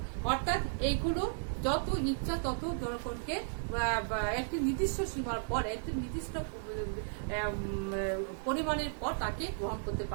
অর্থাৎ এইগুলো যত ইচ্ছা তত জনগণকে একটি নির্দিষ্ট সীমার পর, একটি নির্দিষ্ট পরিমাণের পর তাকে গ্রহণ করতে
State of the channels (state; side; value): silent; left; digital silence